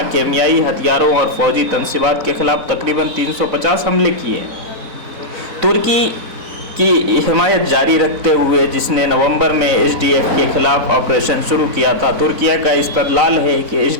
کیمیائی ہتھیاروں اور فوجی تنصیبات کے خلاف تقریباً 350 حملے کیے ہیں۔ ترکی کی حمایت جاری رکھتے ہوئے جس نے نومبر میں SDF کے خلاف آپریشن شروع کیا تھا۔ ترکیہ کا استدلال ہے کہ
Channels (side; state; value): left; late; 3.9 ms